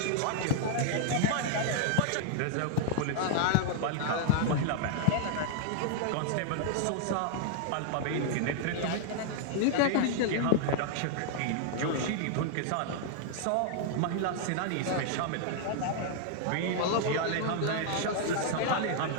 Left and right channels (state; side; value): different; both; correlation 0.00